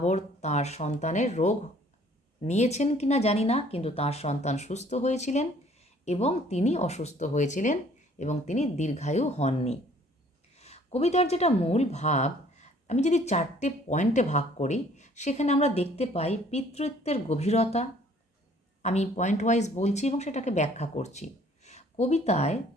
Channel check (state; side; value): normal; both; correlation 0.58